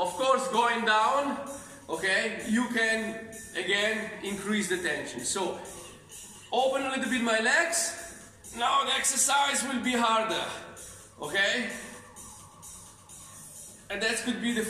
course going down, okay, you can again increase the tension. So open a little bit my legs. Now the exercise will be harder. Okay, and that could be the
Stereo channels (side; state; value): both; identical; correlation 1.00